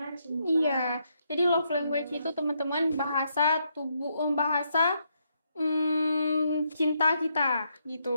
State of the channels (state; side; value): inverted; both; correlation -0.77